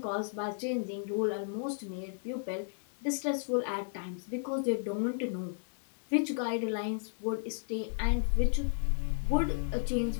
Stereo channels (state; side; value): silent; right; digital silence